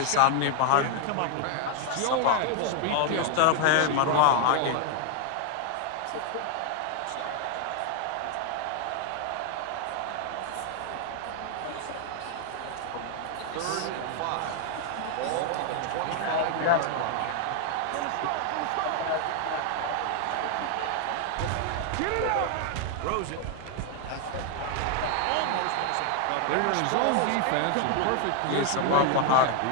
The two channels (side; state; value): both; different; correlation 0.00